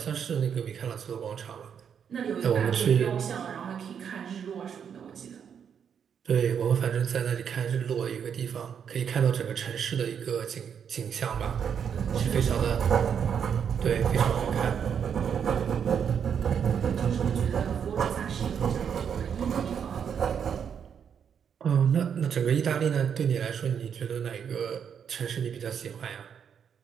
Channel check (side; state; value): left; quieter; 7.7 dB